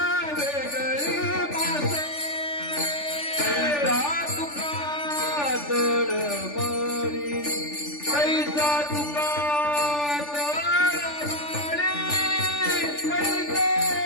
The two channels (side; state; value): right; late; 3.4 ms